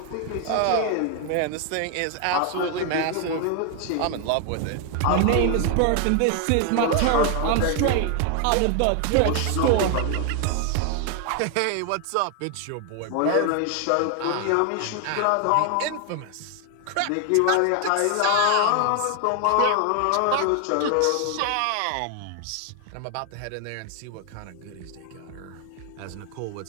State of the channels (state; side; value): different; both; correlation 0.00